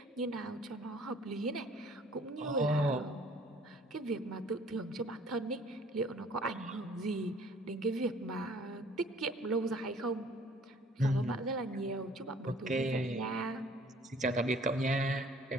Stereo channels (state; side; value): normal; both; correlation 0.55